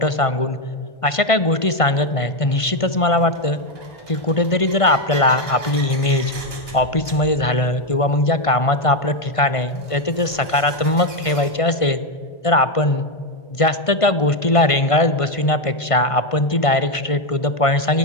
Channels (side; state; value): right; late; 1.5 ms